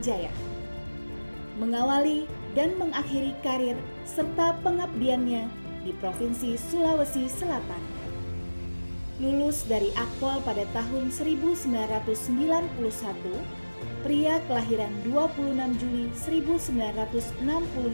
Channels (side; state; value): both; inverted; correlation -1.00